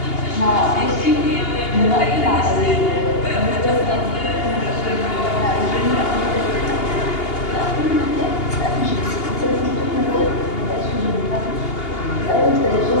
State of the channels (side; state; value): right; late; 2.8 ms